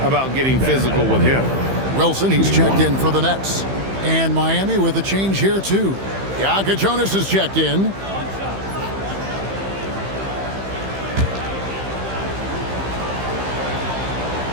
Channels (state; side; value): late; left; 15 ms